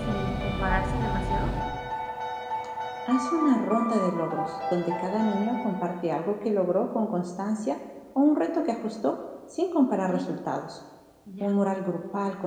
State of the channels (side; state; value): both; identical; correlation 1.00